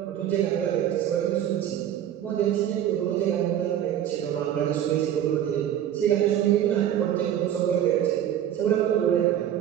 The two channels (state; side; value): quieter; left; 10.7 dB